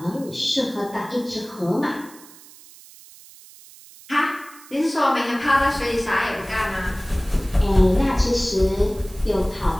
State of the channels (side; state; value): right; noise; hiss, 21 dB below the sound